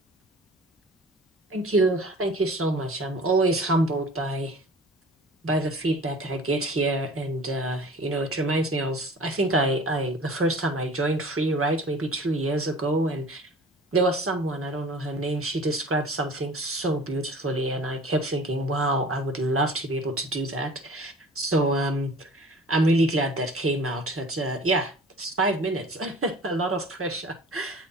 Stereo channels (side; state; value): both; normal; correlation 0.44